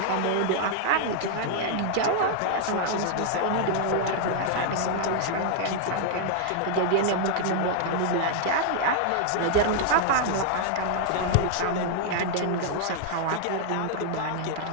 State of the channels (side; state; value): both; different; correlation 0.00